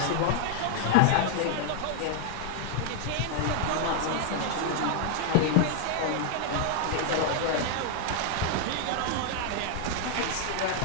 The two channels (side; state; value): both; different; correlation -0.01